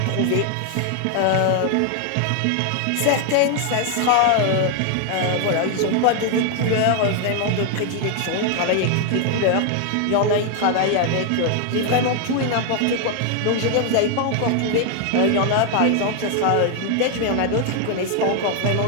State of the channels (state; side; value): different; both; correlation 0.00